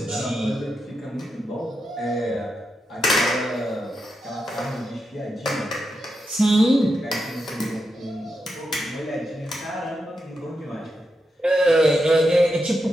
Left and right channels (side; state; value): both; normal; correlation 0.86